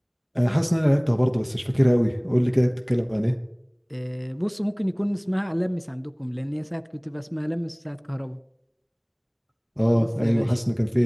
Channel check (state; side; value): identical; both; correlation 1.00